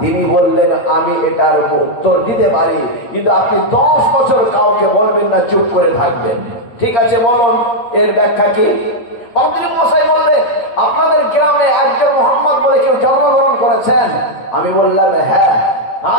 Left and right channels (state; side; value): late; right; 8.6 ms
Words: তিনি বললেন, আমি এটার উত্তর দিতে পারি, কিন্তু আপনি 10 বছর কাউকে বলবেন না, চুপ করে থাকবেন। ঠিক আছে, বলুন এর ব্যাখ্যা কি? পাদ্রী মশাই বললেন, আপনাদের গ্রামে একজন মোহাম্মদ বলে কেউ জন্মগ্রহণ করেছেন? আমি বললাম হ্যাঁ।